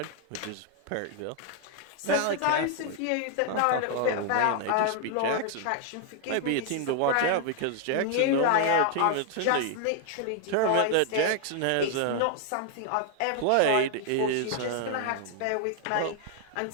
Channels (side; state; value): both; different; correlation 0.00